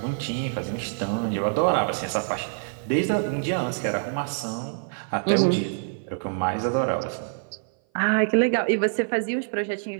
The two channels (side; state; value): left; silent; 57 dB below the other